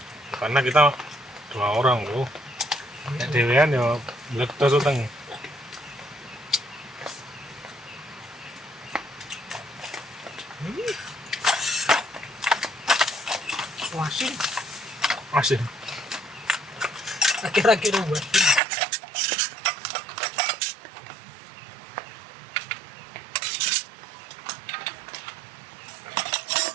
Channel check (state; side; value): drops out; left; at 18.6 s